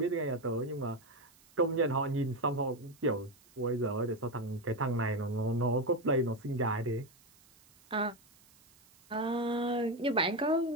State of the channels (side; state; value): right; noise; hiss, 28 dB below the sound